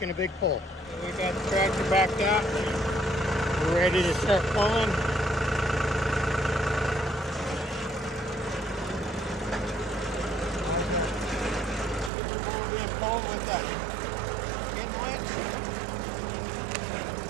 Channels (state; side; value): drops out; left; at 12.1 s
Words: a big pull. We got the tractor backed out. We're ready to start pulling.